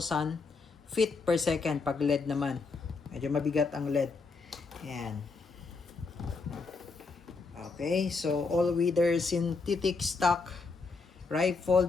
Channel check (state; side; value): quieter; right; 4.3 dB